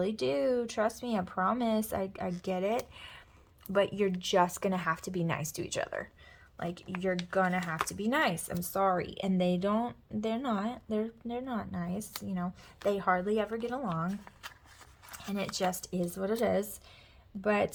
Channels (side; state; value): both; identical; correlation 1.00